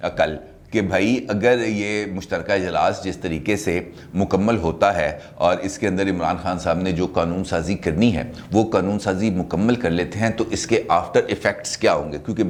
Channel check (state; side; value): identical; both; correlation 1.00